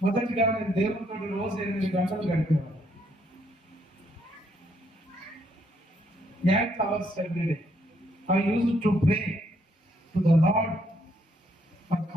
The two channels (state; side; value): normal; both; correlation 0.72